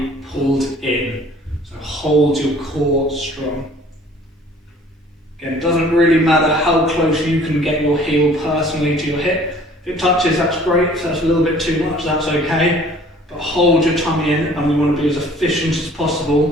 pulled in. So hold your core strong. Again, it doesn't really matter how close you can get your heel personally to your hip. If it touches, that's great. If that's a little bit too much, that's okay. But hold your tummy in, and we want to be as efficient as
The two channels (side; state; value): both; normal; correlation 0.53